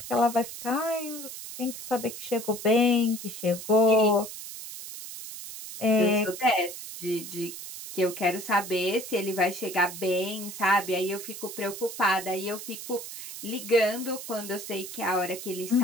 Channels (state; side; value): noise; right; hiss, 10 dB below the sound